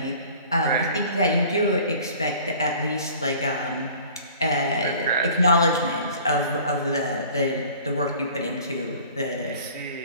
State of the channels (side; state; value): both; inverted; correlation -0.48